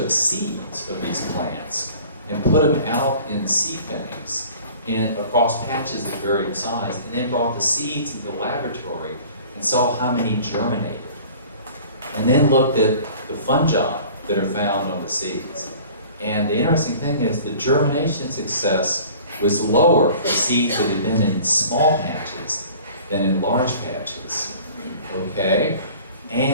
seeds of these plants and put them out in seed banks across patches of varying size, and then brought the seeds into the laboratory and saw how many germinated. And then looked at the fungi that are found on the seeds. And the interesting thing is the germination success was lower for seeds that had been in small patches than in large patches, okay?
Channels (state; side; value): inverted; both; correlation -0.46